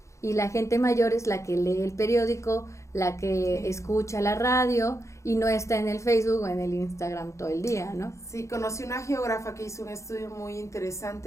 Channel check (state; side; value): late; right; 0.14 ms